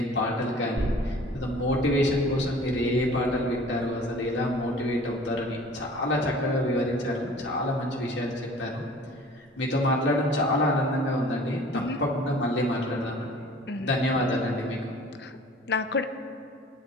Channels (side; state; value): both; normal; correlation 0.47